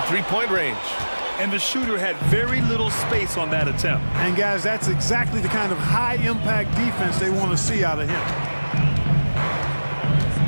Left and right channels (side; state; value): both; inverted; correlation -1.00